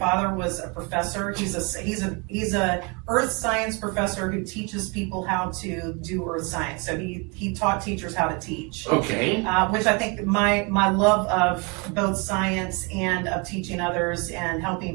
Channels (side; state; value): left; quieter; 31.0 dB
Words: was a professor. He's a earth science professor who teaches people how to do earth science. So he taught teachers how to teach. Okay. Which I think my love of both science and of teaching others and